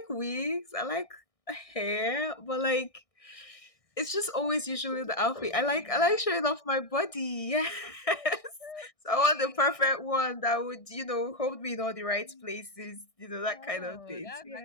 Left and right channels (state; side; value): late; right; 1.6 ms